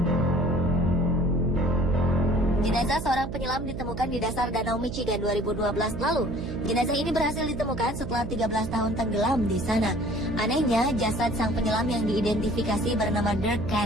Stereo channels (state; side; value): noise; right; hum, 7 dB below the sound